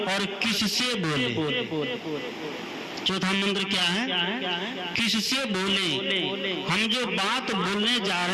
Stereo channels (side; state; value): both; identical; correlation 1.00